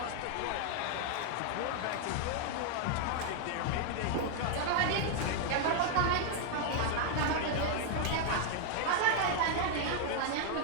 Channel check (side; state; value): both; different; correlation 0.00